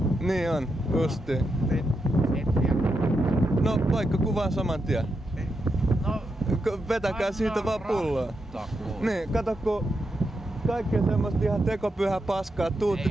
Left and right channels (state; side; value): normal; both; correlation 0.85